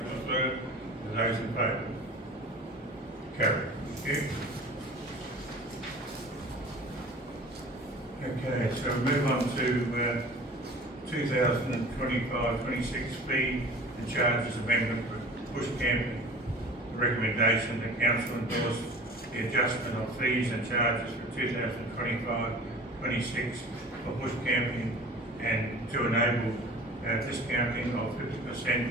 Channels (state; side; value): normal; both; correlation 0.41